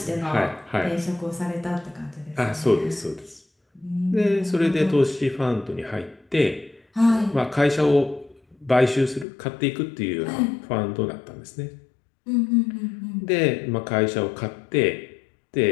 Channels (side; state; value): right; drops out; at 9.2 s